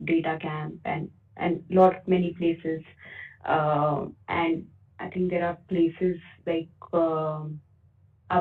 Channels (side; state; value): both; identical; correlation 1.00